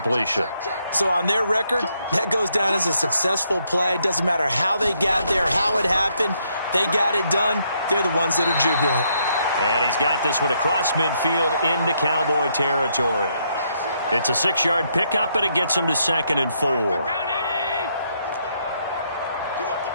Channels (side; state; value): both; inverted; correlation -0.74